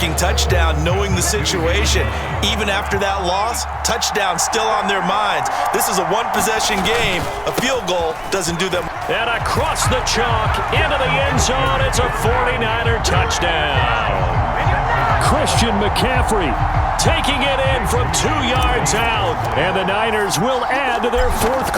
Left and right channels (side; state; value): both; identical; correlation 1.00